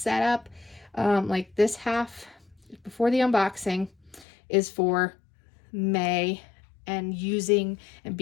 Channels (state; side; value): drops out; right; at 4.2 s